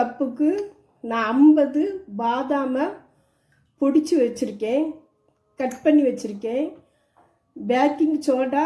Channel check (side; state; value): both; identical; correlation 1.00